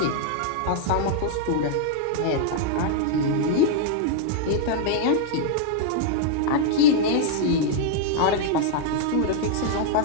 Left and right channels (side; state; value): both; different; correlation -0.01